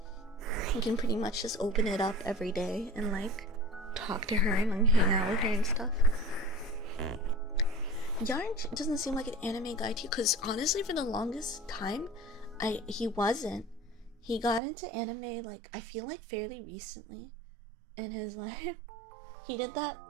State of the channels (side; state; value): left; drops out; at 14.6 s